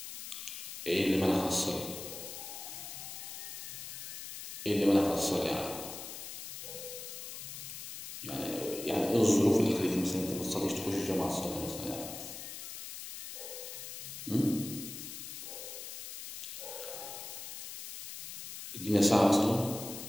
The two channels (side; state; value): left; noise; hiss, 8 dB below the sound